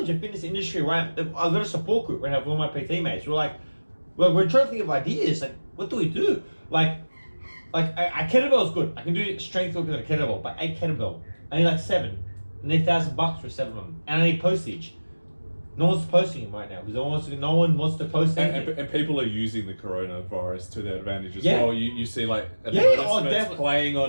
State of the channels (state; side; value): inverted; both; correlation -1.00